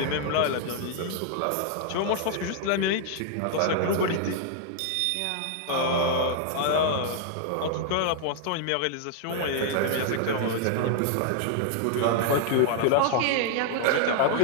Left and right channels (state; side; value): different; both; correlation 0.00